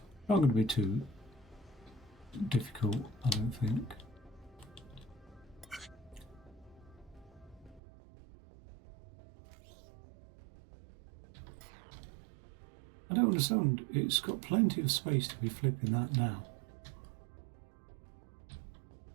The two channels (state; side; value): drops out; left; at 7.8 s